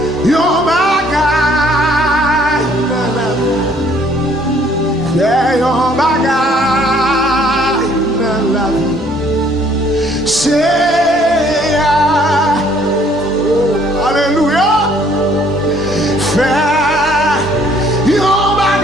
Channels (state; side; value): normal; both; correlation 0.61